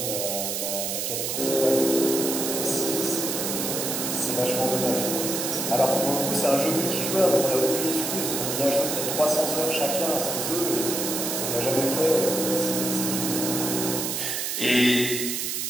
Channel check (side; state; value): right; noise; hiss, 2 dB below the sound